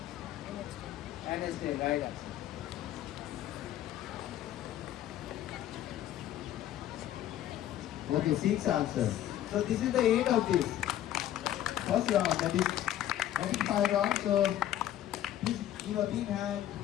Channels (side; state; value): right; quieter; 12.2 dB